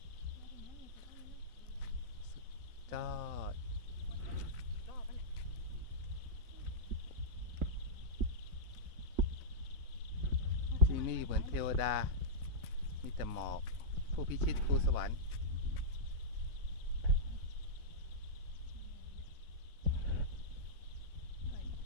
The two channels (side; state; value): left; late; 4.0 ms